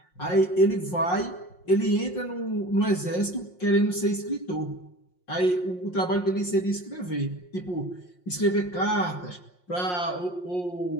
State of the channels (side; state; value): right; late; 5.6 ms